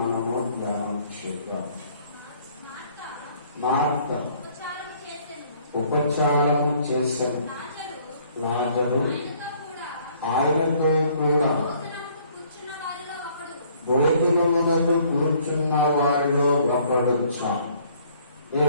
ధ్యానం చేద్దాం. మార్త ఉపచారము చేసెను, లాజరు ఆయనతో కూడా భోజనమునకు కూర్చున్న వారిలో ఒకడొచ్చా.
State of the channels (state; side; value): inverted; both; correlation -0.61